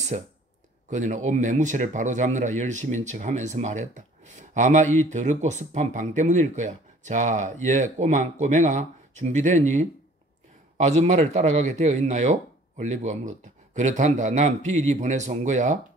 그녀는 옷 매무새를 바로잡느라 열심인 척하면서 말했다. 아마 이 더럽고 습한 방 때문일 거야. 자, 꼬맹아 준비됐니? 아줌마를 따라가게 되어 있나요? 올리브가 물었다. 그렇단다. 난 비리 보내서 온 거야.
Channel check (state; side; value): normal; both; correlation 0.53